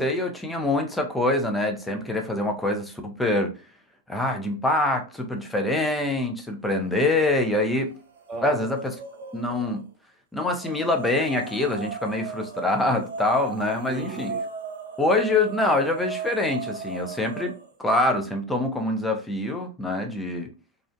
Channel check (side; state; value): both; normal; correlation 0.37